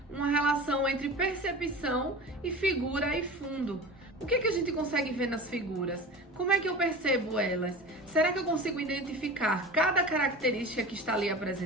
uma relação entre percepção e figura e fundo. O que a gente consegue ver nas figuras? Como é que eu percebo elas? Será que eu consigo identificar cada característica que está ali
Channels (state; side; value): normal; both; correlation 0.34